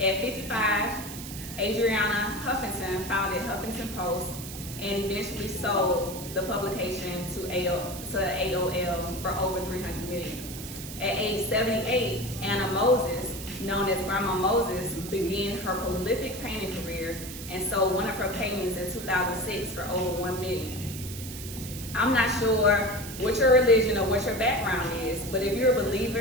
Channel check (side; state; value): right; noise; hiss, 11 dB below the sound